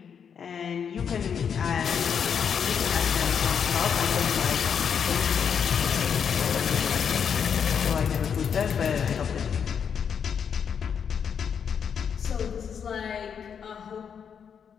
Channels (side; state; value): right; quieter; 7.3 dB